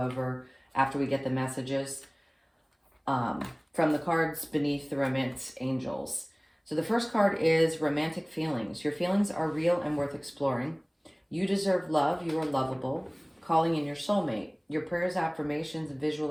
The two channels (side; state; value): both; identical; correlation 1.00